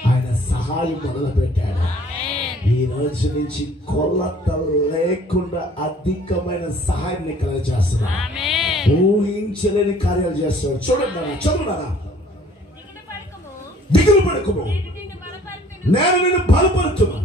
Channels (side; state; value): both; normal; correlation 0.55